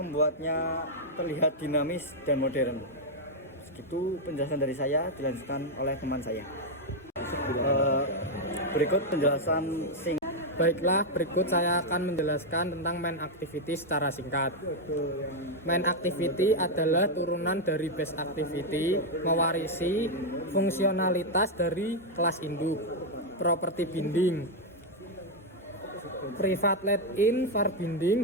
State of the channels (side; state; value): both; normal; correlation 0.01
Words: terlihat dinamis dan modern. Segitu penjelasan dari saya, dilanjutkan oleh teman saya. Berikut penjelasan Baiklah, berikut saya akan menjelaskan tentang main activity secara singkat. Main activity adalah turunan dari base activity, mewarisi fungsionalitas dari kelas induk. Properti binding. Private let-in var